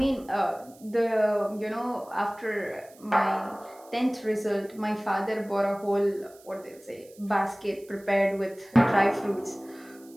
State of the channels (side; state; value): right; noise; hiss, 26 dB below the sound